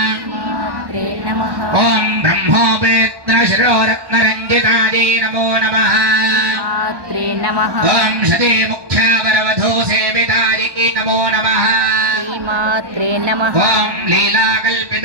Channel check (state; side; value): late; left; 1.1 ms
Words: मात्रे नमः ॐ ब्रह्मोपेत्नशिरोरत्नरञ्जितायै नमो नमः मात्रे नमः ॐ शतीमुख्यावरवधू सेवितायै नमो नमः मात्रे नमः ॐ